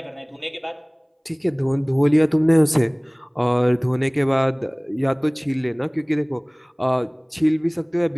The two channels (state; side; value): identical; both; correlation 1.00